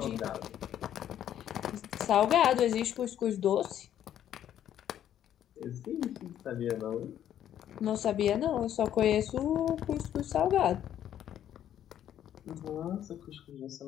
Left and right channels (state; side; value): quieter; right; 10.7 dB